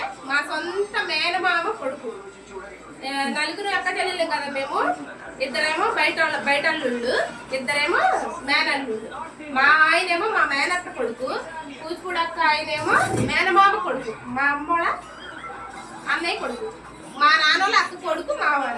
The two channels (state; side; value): identical; both; correlation 1.00